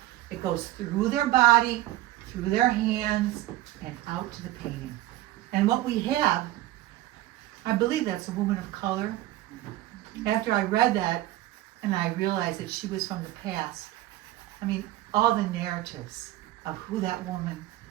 it goes through their body, through their hands, and out to the painting. And what we have, I believe that's a woman of color. After I read that, and I realized that she was from the past, I mean, all the narratives of who that woman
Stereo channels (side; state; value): left; quieter; 15.7 dB